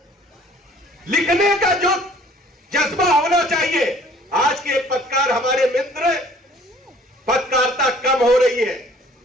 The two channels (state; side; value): normal; both; correlation 0.54